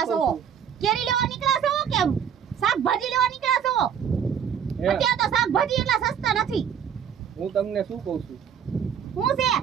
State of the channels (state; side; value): quieter; left; 8.2 dB